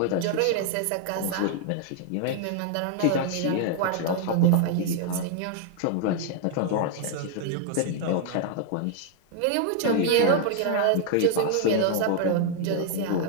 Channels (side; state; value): both; different; correlation 0.00